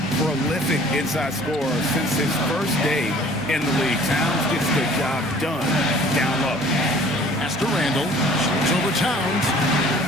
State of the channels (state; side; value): noise; right; hum, 23 dB below the sound